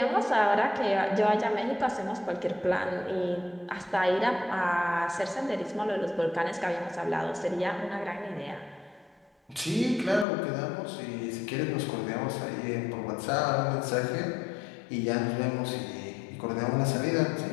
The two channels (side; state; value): right; drops out; at 10.2 s